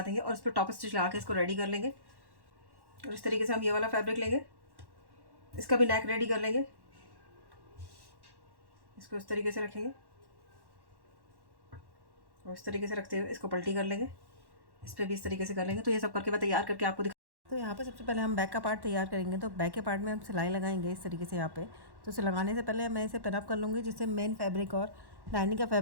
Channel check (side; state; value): left; late; 1.1 ms